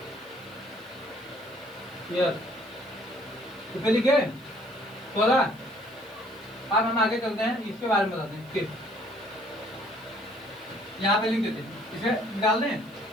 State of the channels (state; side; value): noise; right; hiss, 27 dB below the sound